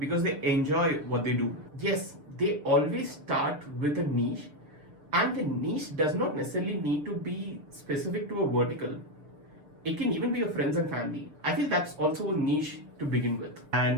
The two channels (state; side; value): late; left; 6.7 ms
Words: they enjoy what they do. Yes, they always start with a niche, and the niche does not necessarily need to be specific to a vertical. It can even be your friends and family. I feel that's also a niche to begin with.